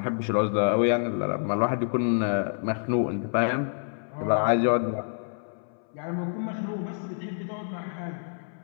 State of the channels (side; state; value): right; silent; 60 dB below the other